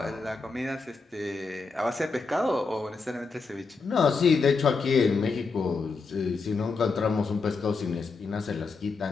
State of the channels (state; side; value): quieter; right; 4.4 dB